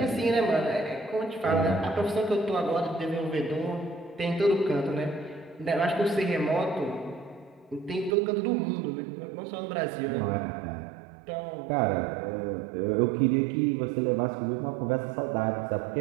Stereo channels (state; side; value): drops out; left; at 8.2 s